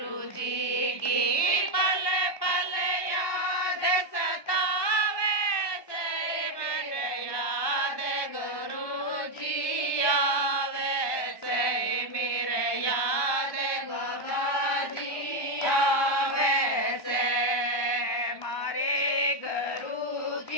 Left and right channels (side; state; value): right; late; 1.2 ms